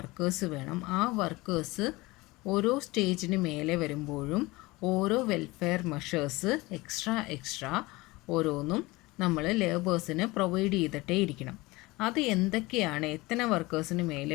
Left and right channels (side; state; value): right; quieter; 21.8 dB